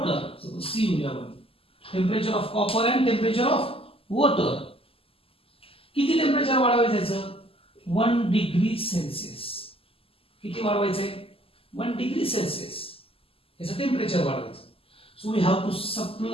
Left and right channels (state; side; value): late; right; 0.27 ms